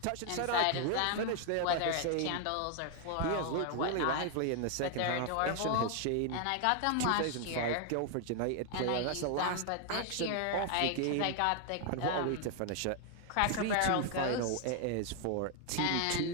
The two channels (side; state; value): both; different; correlation 0.00